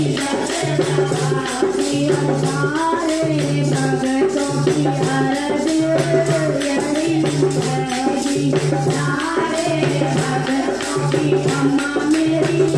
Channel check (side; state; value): right; noise; hum, 23 dB below the sound